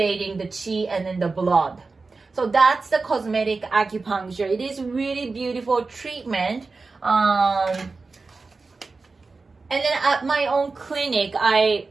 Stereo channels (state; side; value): quieter; left; 4.0 dB